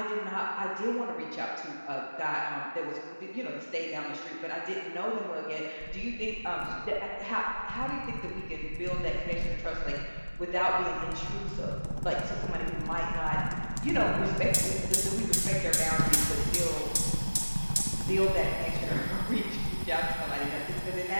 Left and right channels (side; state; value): both; inverted; correlation -1.00